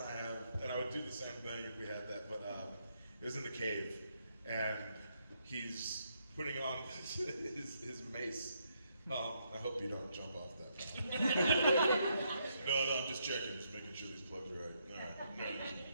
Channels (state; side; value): inverted; both; correlation -0.76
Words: I have, and I would do the same thing if we had that. But it was in the cave, and he's putting on his mace. I hope you don't jump off that. No, I'm just checking, just making sure these plugs are right. All right, no,